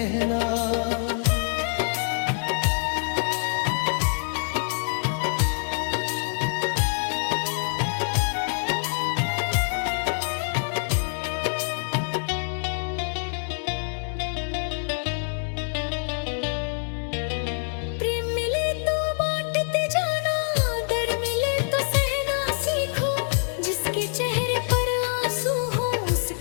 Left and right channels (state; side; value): silent; right; 61 dB below the other